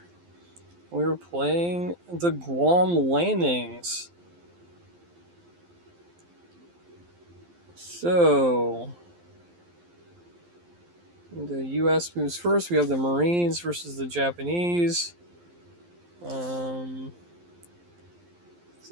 We were playing the Guam Landings. So, the U.S. moves first. We have the Marines versus the Japanese. The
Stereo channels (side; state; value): left; late; 12 ms